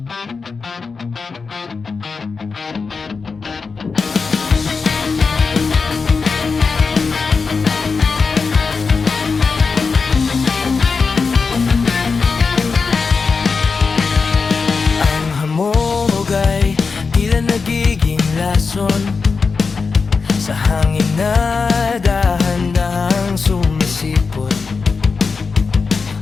hamog ay tila nagiging lason sa hangin na dahan-dahang sumisipot.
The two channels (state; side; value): quieter; right; 4.8 dB